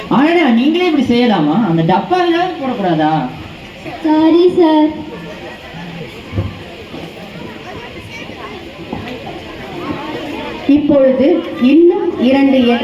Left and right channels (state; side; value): identical; both; correlation 1.00